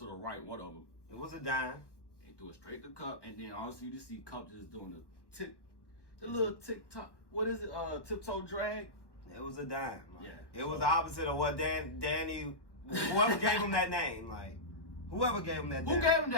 the right, one of them. It was a dime. He threw it straight to Cup, and then honestly, you just see Cup just doing the little tick-tock. What is it? Tiptoe drag? It was a dime. Like, yeah. It was the opposite of what Danny, whoever gave him that name, like, whoever gave him that name. Who gave him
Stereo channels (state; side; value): late; right; 1.1 ms